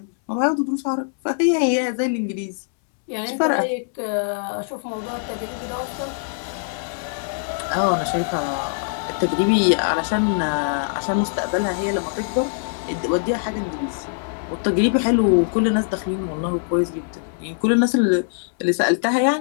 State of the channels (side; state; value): right; silent; 64 dB below the other